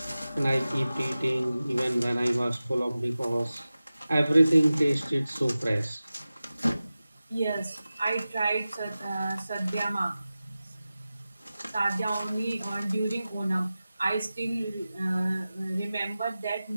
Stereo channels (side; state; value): both; inverted; correlation -0.96